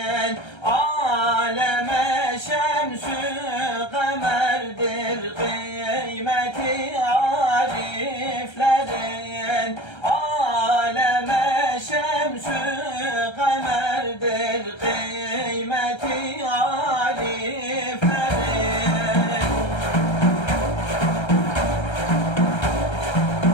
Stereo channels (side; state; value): right; late; 1.3 ms